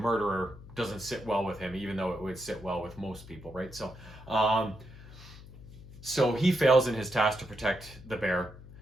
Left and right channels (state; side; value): noise; left; hum, 17 dB below the sound